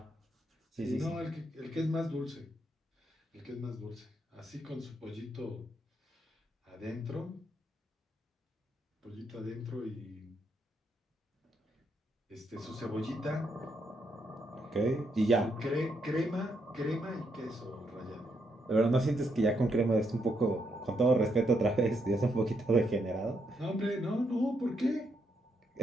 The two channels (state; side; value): normal; both; correlation 0.78